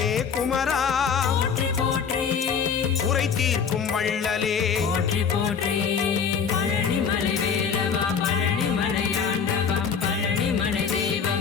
குமரா போற்றி போற்றி குறை தீர்க்கும் வள்ளலே போற்றி போற்றி பழனிமலை வேலவா பழனிமலை ஆண்டவா பழனிமலை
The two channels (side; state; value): right; quieter; 6.6 dB